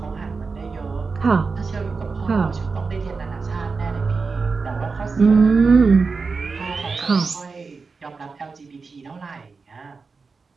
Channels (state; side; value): quieter; left; 4.6 dB